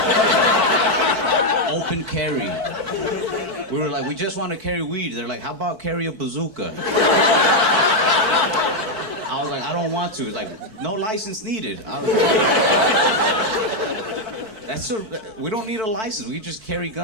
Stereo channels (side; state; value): left; late; 4.5 ms